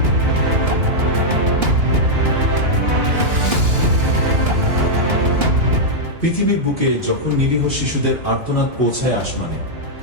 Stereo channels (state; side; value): late; left; 2.9 ms